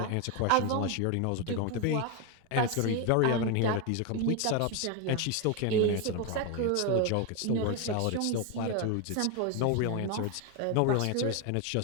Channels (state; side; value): different; both; correlation 0.01